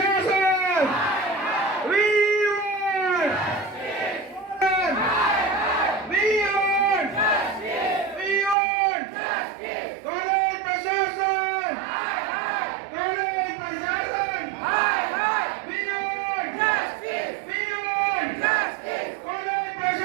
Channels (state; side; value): drops out; left; at 8.6 s